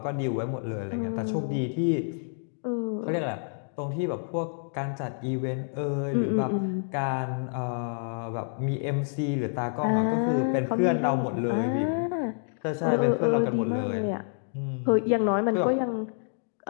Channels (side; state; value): right; silent; digital silence